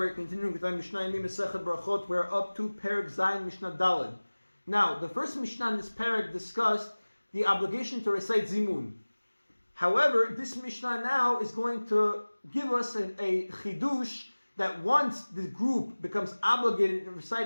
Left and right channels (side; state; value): both; inverted; correlation -1.00